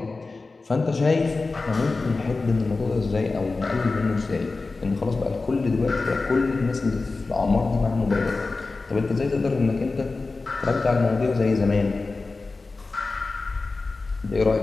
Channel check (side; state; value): right; quieter; 3.7 dB